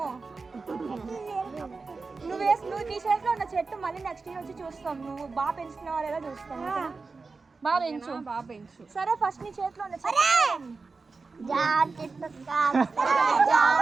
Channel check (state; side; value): quieter; left; 4.2 dB